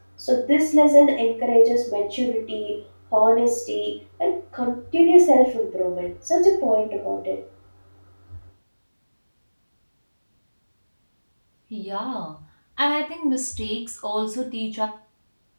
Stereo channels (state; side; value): inverted; both; correlation -1.00